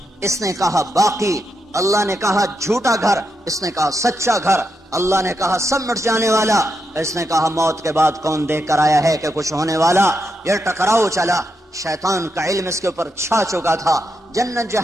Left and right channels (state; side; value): normal; both; correlation 0.83